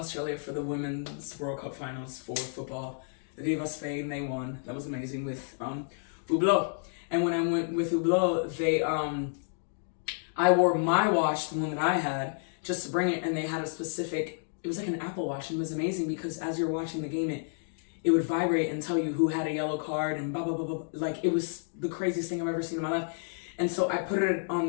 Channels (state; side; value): silent; right; digital silence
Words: for the Women's World Cup Finals for football. Viva Spain, they won. That was amazing with Hublot. And when I went with Hublot, I wore my watch, the one that I had, just to bring it, and they had it was like an Apple Watch, and it was amazing because as you're watching the game, it would vibrate and tell you who had a yellow card and blah, blah, blah, blah. Like, it was the craziest thing I've ever seen in my life. And so I put it on